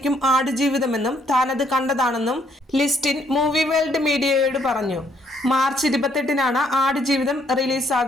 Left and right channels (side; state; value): both; normal; correlation 0.69